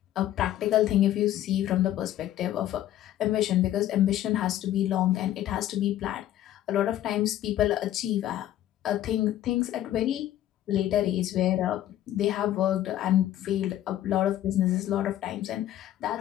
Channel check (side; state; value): right; quieter; 12.7 dB